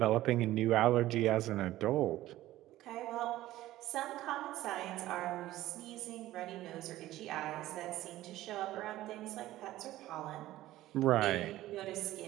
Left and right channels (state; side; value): quieter; left; 15.4 dB